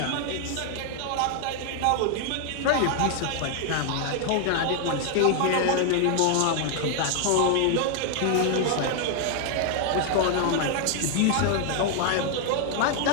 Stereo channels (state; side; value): different; both; correlation 0.00